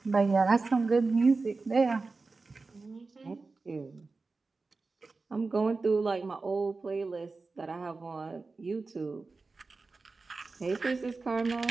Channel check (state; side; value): quieter; left; 3.9 dB